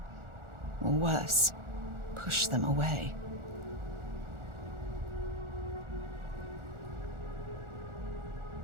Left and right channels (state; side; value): late; left; 1.4 ms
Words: Or worse, push them away.